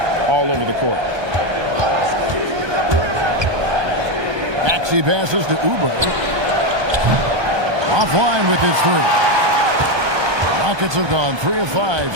all over the court. Maxey passes to Oubre. Offline with his 3. Rockets have gone 3 of 5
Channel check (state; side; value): late; left; 1.2 ms